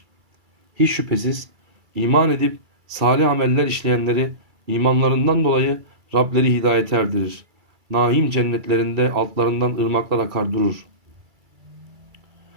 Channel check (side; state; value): left; late; 2.3 ms